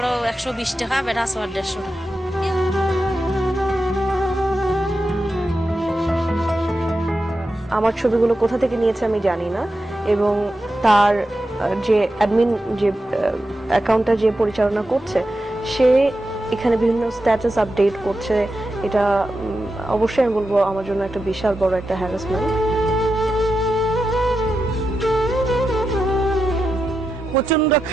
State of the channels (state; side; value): normal; both; correlation 0.89